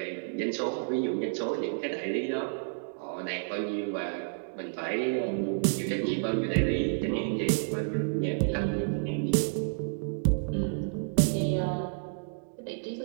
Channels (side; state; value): left; silent; digital silence